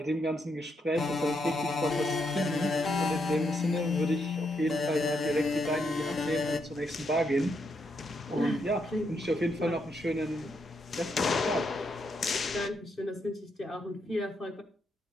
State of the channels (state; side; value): normal; both; correlation 0.79